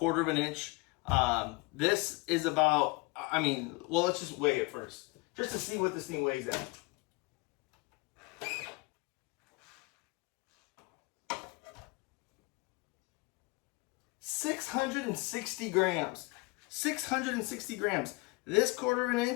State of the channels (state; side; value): quieter; right; 25.5 dB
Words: of an inch. This is about, well, let's just weigh it first, just to see what this thing weighs at. $660 grams. 660 grams. This 1/4 of an